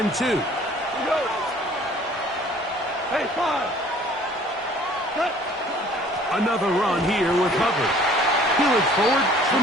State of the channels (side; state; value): both; normal; correlation 0.53